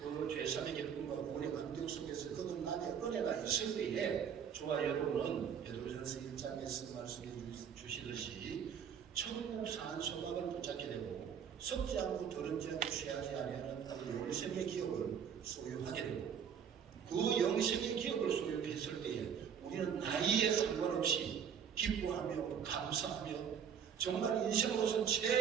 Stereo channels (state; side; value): quieter; left; 7.8 dB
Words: 죄사함의 기쁨과 구원의 감격 속에서 거듭남의 은혜가 있을 때에 저와 여러분은 베드로전서 1장에서 말씀해 주시듯이 천국 산 소망을 붙잡게 되고 썩지 않고 더럽지 않고 취하지 아니하는 영생의 기업을 소유하게 되고 그 영생의 기업을 소유했을 때에 우리는 나이에 상관없이 기뻐하며 감사하며 정말 인생으로서